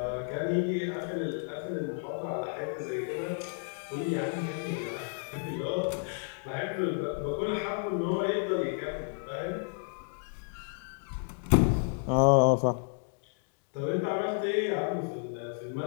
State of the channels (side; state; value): right; silent; 57 dB below the other